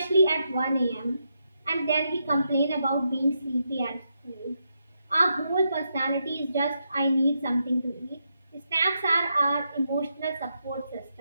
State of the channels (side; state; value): both; inverted; correlation -0.83